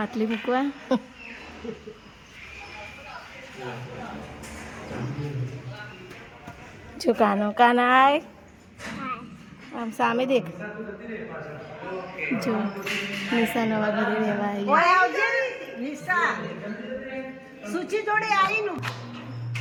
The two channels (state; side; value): identical; both; correlation 1.00